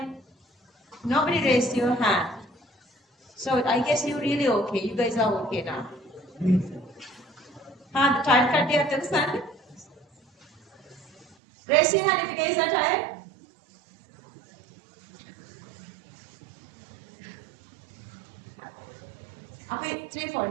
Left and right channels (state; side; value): drops out; left; at 11.4 s